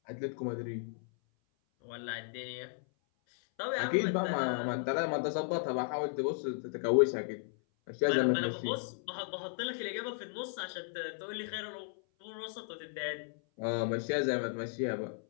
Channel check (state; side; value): silent; right; 54 dB below the other